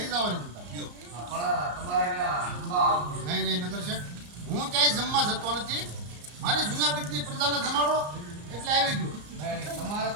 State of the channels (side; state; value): left; late; 34 ms